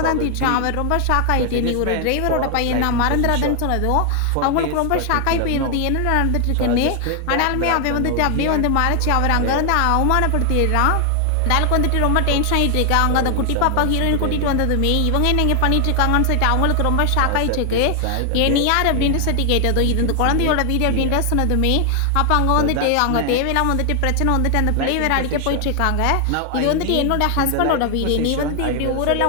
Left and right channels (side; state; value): both; different; correlation 0.00